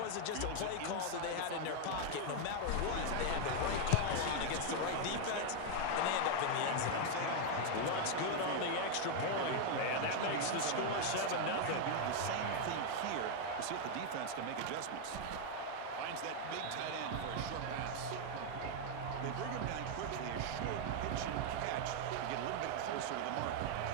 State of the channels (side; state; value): both; different; correlation 0.00